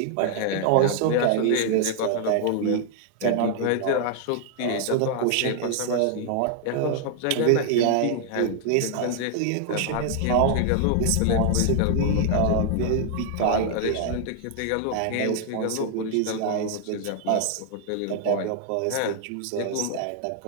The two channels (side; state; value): both; different; correlation 0.00